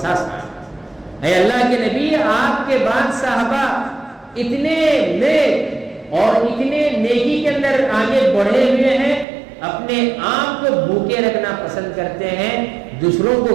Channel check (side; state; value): left; drops out; at 9.2 s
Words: اے اللہ کے نبی آپ کے بعد صحابہ اتنے نیک اور اتنے نیکی کے اندر آگے بڑھے ہوئے ہیں، اپنے آپ کو بھوکے رکھنا پسند کرتے ہیں، دوسروں کو